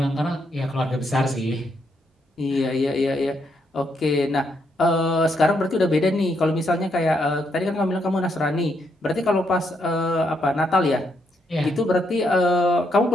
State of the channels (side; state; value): both; normal; correlation 0.77